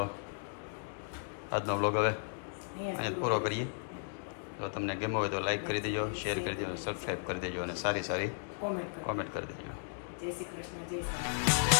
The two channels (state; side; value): silent; right; digital silence